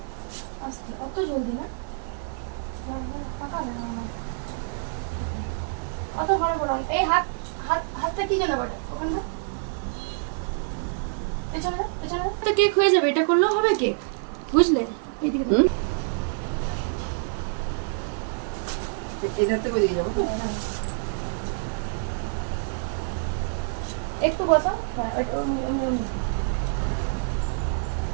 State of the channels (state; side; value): silent; left; digital silence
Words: অত জলদি না, অত বড় বড় এই হাতটা কি জানো বেটা, ওখানটা পেছনে পেছনে তো কেক হয়ে যাবে। এটা করলেও হবে কেক, বুঝলে? এদিকে এটাতে করে দিয়ে যাবো, একটু বসাও।